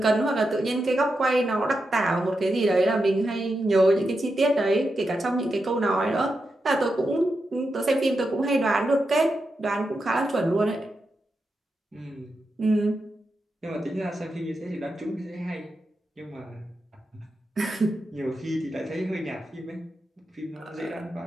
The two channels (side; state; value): both; normal; correlation 0.87